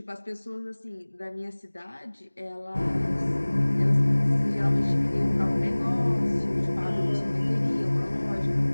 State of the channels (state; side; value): inverted; both; correlation -1.00